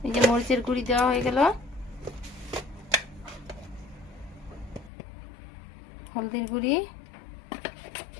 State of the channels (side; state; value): right; drops out; at 4.9 s